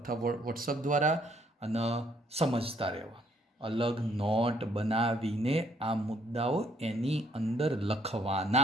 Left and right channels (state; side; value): normal; both; correlation 0.67